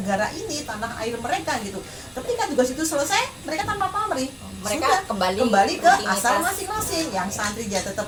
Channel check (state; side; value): identical; both; correlation 1.00